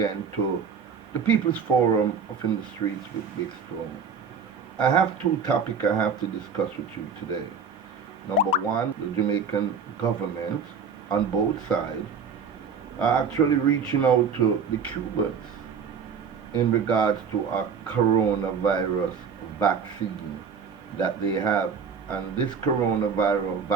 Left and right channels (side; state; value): left; quieter; 5.9 dB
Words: to the People's Forum of In the Streets with Big Stone. I have two topics I have to discuss with you today. Number one, the Jamaican government on both sides are actually reaching out to the Cubans in regards to a coronavirus vaccine that they have. And this coronavirus